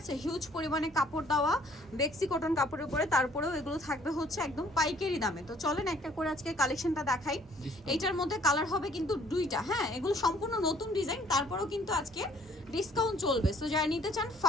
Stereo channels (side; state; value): both; normal; correlation 0.59